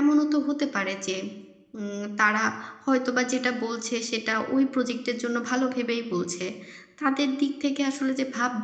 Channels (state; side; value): identical; both; correlation 1.00